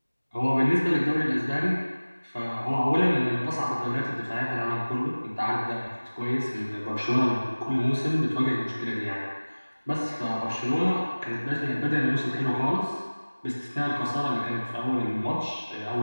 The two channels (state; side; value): inverted; both; correlation -1.00